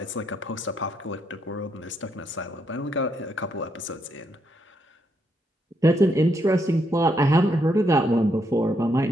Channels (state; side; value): normal; both; correlation 0.77